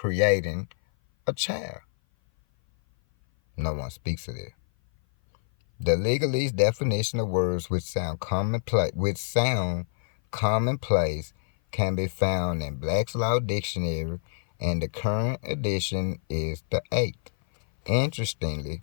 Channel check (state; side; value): silent; right; 57 dB below the other